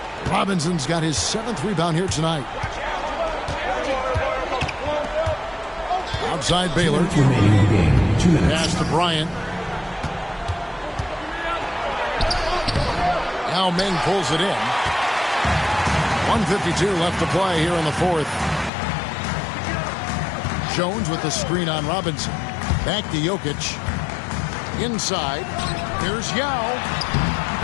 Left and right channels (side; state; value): right; drops out; at 18.7 s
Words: Robinson's got his 7th rebound here tonight. Outside Baylor. Pass to Bryant. Now Meng pulls it in. 1:52 left to play here in the 4th. Jones with the screen on Robinson. Back to Jokic. Inside. Here's Yao.